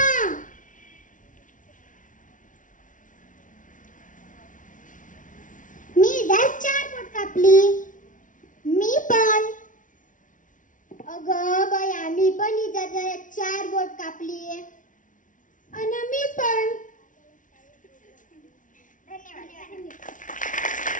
मी इजार 4 बोट कापली. मी पण. अगं बया, मी पण इजार 4 बोट कापली. आणि मी पण.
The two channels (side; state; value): right; late; 0.38 ms